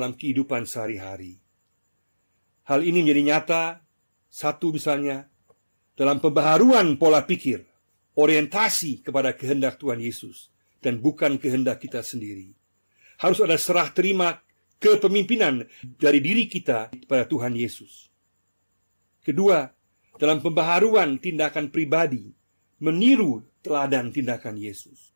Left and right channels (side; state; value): both; inverted; correlation -1.00